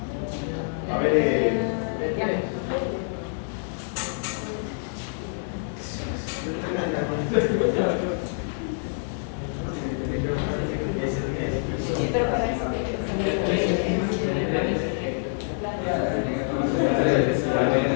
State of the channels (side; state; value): right; silent; 61 dB below the other